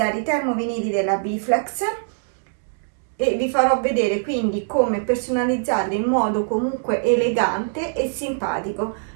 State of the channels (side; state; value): left; silent; digital silence